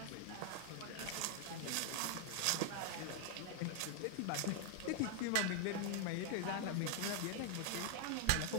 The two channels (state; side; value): different; both; correlation 0.00